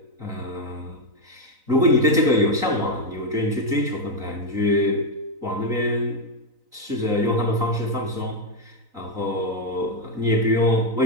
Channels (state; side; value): late; left; 4.0 ms